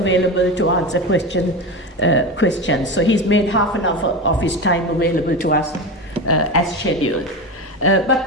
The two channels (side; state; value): both; normal; correlation 0.23